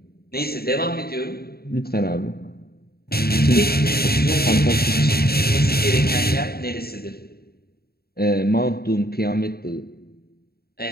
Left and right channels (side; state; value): right; late; 0.45 ms